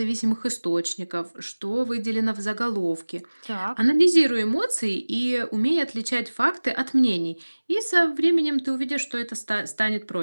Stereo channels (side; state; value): both; inverted; correlation -1.00